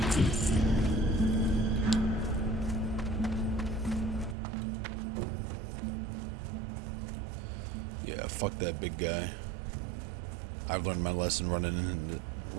Yeah, fuck that big guy. I've learned my lesson running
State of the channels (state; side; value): drops out; left; at 4.4 s